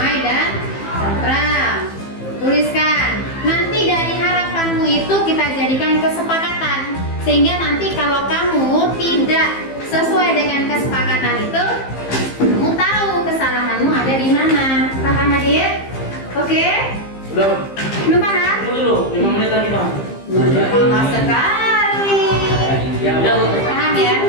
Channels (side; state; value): right; late; 15 ms